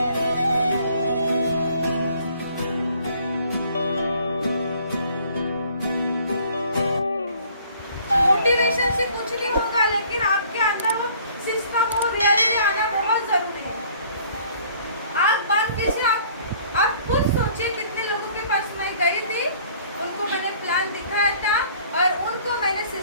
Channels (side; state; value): both; inverted; correlation -0.56